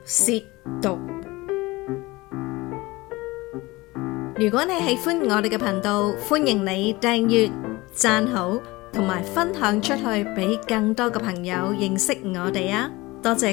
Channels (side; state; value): right; quieter; 21.4 dB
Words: 褻瀆。如果你喜歡我哋嘅頻道，歡迎你訂閱、讚好同埋分享出去，俾更多嘅朋友認識我哋啊！多謝